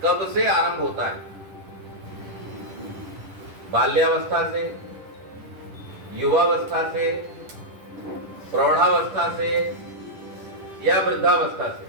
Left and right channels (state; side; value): late; left; 10 ms